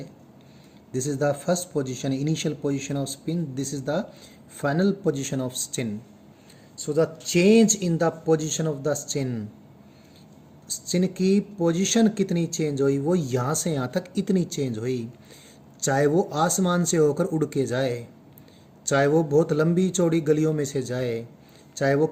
This is the first position, initial position of Sachin. This is the final position of Sachin. So the change in the position of the Sachin, Sachin की पोजीशन कितनी चेंज हुई, वो यहाँ से यहाँ तक इतनी चेंज हुई। चाहे वो आसमान से होकर उड़ के जाए, चाहे वो बहुत लंबी चौड़ी गलियों में से जाए, चाहे वो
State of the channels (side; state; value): both; identical; correlation 1.00